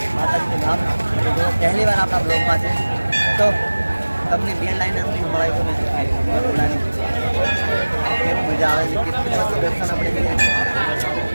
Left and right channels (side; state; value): both; inverted; correlation -1.00